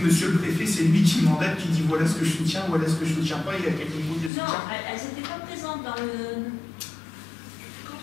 le préfet, c'est lui qui mandate, qui dit voilà ce que je soutiens, voilà ce que je ne soutiens pas, il y a quel niveau de soutien. Non, elles n'étaient pas présentes dans le... Quand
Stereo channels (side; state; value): right; drops out; at 4.3 s